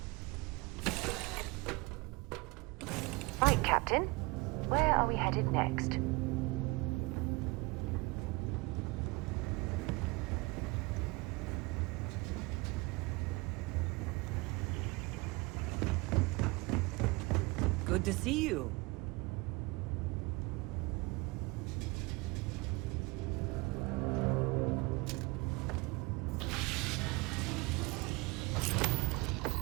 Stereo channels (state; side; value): quieter; left; 25.2 dB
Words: Right, Captain. Where are we headed next? Good to see you.